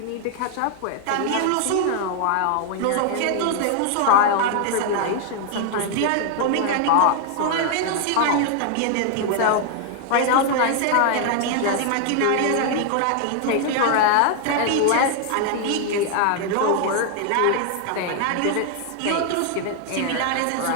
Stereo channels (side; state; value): both; different; correlation 0.00